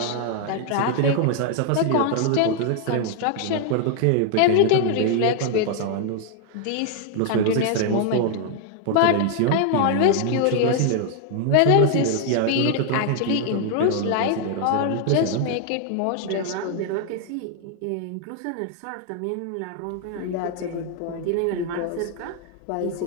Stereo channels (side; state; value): both; different; correlation 0.00